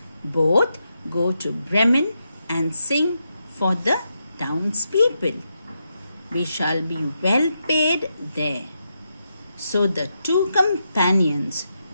both go to Bremen and sing for the townspeople. We shall be well paid there. So the two companions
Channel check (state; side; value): inverted; both; correlation -0.84